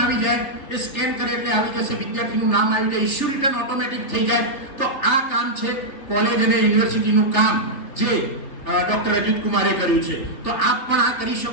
આવી જાય, એ સ્કેન કરે એટલે આવી જશે, વિદ્યાર્થીનું નામ આવી જાય, ઇશ્યુ રિટર્ન ઓટોમેટિક થઈ જાય. તો આ કામ છે કોલેજ અને યુનિવર્સિટીનું કામ જે ડોક્ટર અજીત કુમારે કર્યું છે. તો આપ પણ આ કરી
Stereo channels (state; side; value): late; right; 3.6 ms